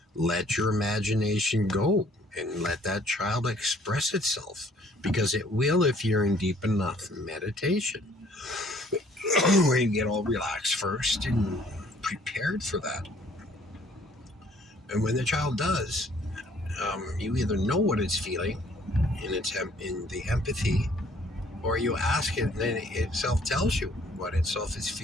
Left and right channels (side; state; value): both; normal; correlation 0.59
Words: let your imagination go and let that child express itself, because it will if you're in deep enough meditation where you get all relaxed first and prepared for that. And when the child does, you either know what it's feeling in the empathy, or you ask it, and then it itself tells you what itself is